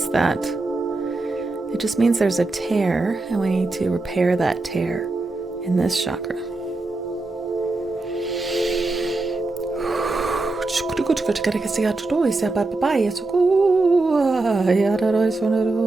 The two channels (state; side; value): quieter; left; 3.2 dB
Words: that. It just means there's a tear, and we need to repair that tear in this chakra.